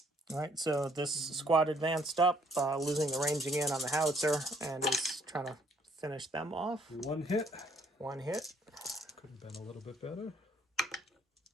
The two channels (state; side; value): normal; both; correlation 0.66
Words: All right, so this squad advanced up, losing the ranging in on the howitzer, and is trying to finish them off. One hit. 1 hit. Could have been a little bit better.